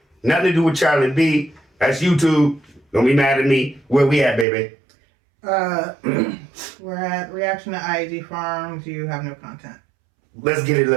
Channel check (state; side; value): drops out; left; at 4.5 s